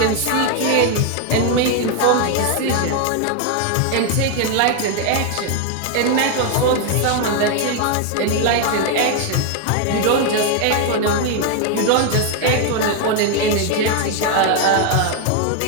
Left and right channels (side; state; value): both; different; correlation 0.01